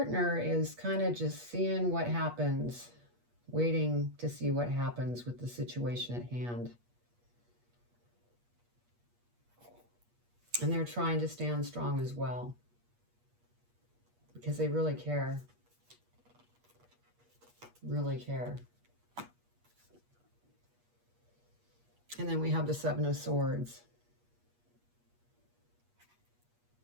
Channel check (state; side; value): late; left; 8.4 ms